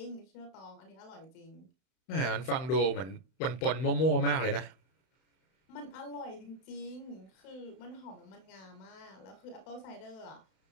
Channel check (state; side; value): late; right; 31 ms